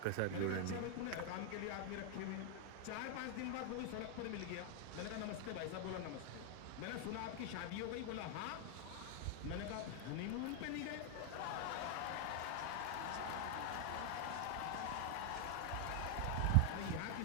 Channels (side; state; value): both; different; correlation 0.00